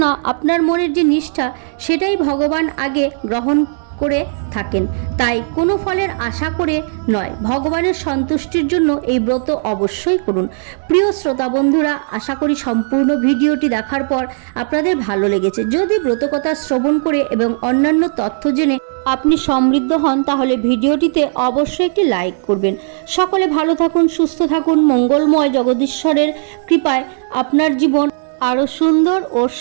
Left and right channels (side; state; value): left; silent; digital silence